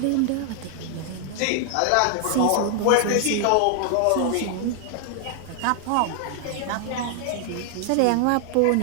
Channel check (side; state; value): both; different; correlation 0.00